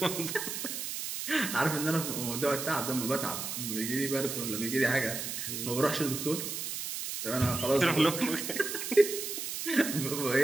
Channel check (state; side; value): noise; right; hiss, 5 dB below the sound